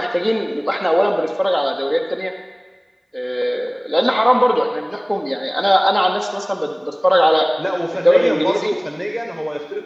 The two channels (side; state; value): both; identical; correlation 1.00